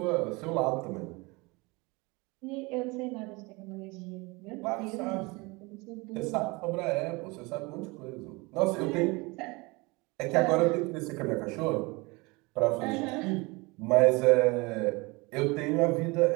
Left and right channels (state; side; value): quieter; left; 25.5 dB